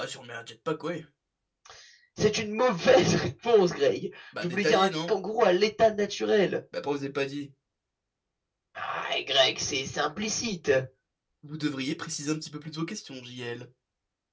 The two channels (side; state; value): both; identical; correlation 1.00